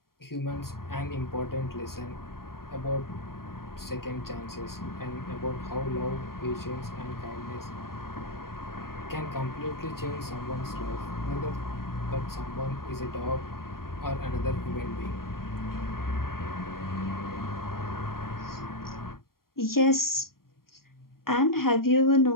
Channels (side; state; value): right; late; 0.93 ms